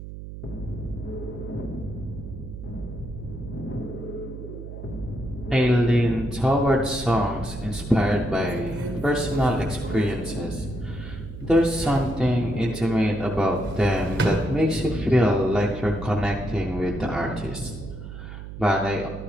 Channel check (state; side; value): noise; right; hum, 11 dB below the sound